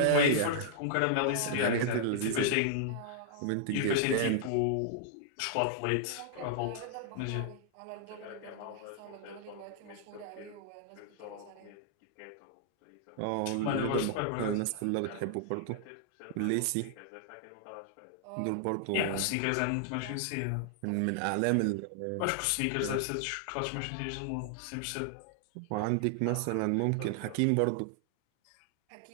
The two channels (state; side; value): different; both; correlation -0.01